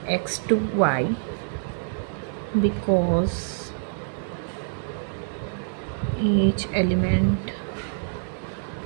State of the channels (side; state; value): left; silent; digital silence